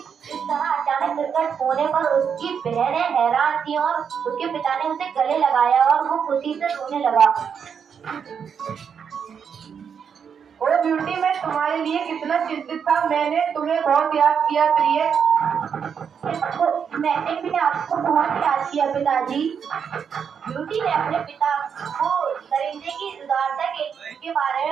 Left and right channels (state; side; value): quieter; left; 7.1 dB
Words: तरह अचानक प्रकट होने पर उसकी बहनें हैरान थी और उसके पिता ने उसे गले लगाया और वो खुशी से रोने लगा। ओ ब्यूटी, मैं तुम्हारे लिए कितना चिंतित था। मैंने तुम्हें बहुत याद किया प्रिय। मैंने भी आपको बहुत याद किया पिताजी। ब्यूटी ने अपने पिता को दरिंदे की उदारता के बारे